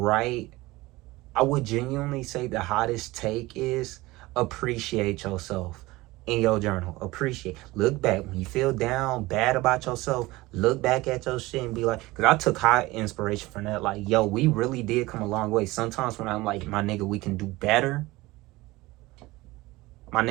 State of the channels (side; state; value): left; quieter; 20.1 dB